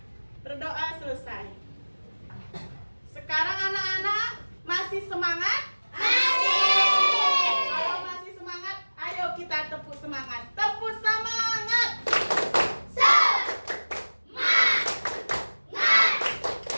Berdoa selesai. Sekarang anak-anak masih semangat? Masih. Kalau masih semangat, ayo kita tepuk semangat. Tepuk semangat.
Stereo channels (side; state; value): both; inverted; correlation -1.00